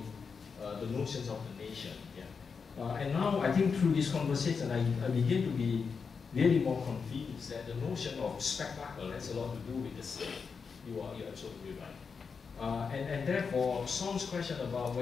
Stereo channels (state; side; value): quieter; right; 5.5 dB